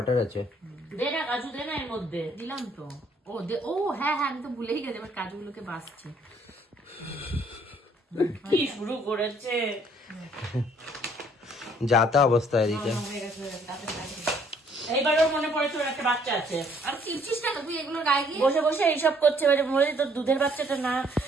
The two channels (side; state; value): both; normal; correlation 0.63